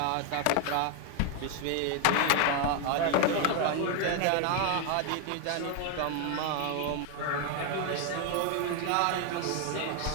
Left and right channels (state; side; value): different; both; correlation 0.00